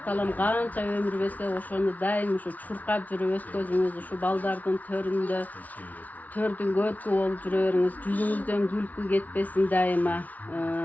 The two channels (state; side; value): late; right; 0.074 ms